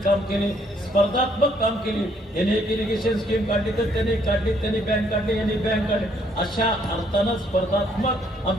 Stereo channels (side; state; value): both; normal; correlation 0.67